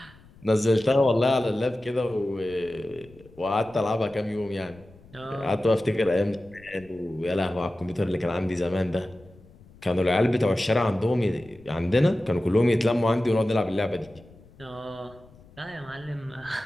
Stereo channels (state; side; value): noise; left; rumble, 24 dB below the sound